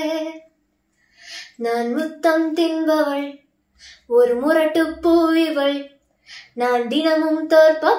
நான் முத்தம் தின்பவள், ஒரு முரட்டு பூவிவள், நான் தினமும்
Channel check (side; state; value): both; identical; correlation 1.00